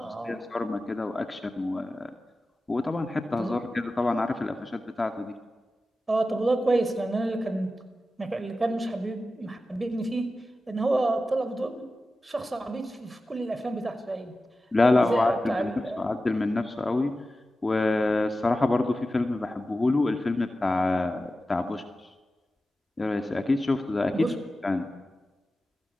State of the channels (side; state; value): both; normal; correlation 0.93